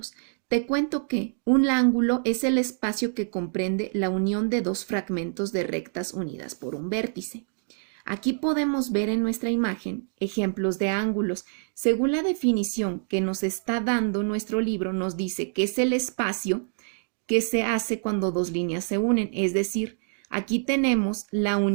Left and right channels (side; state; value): left; silent; 61 dB below the other